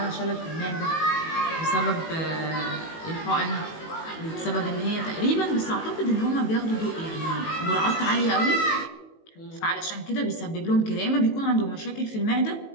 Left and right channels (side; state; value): right; late; 18 ms